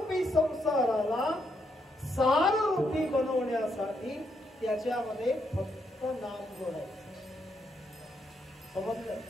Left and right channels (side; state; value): both; normal; correlation 0.77